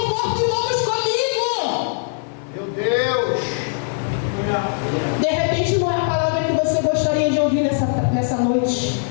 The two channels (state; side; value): silent; right; 65 dB below the other